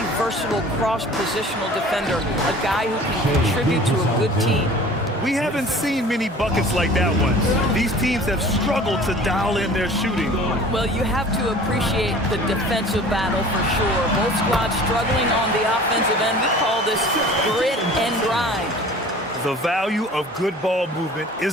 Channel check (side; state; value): both; normal; correlation 0.45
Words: versatile cross-positional defender, a guy who can contribute to a good team. We haven't seen many buckets like that one. These teams have struggled to dial in their shooting. Well, you have to appreciate the defensive battle for sure. Both squads struggling on the offensive end. We call this grit and grind. The value of good ball movement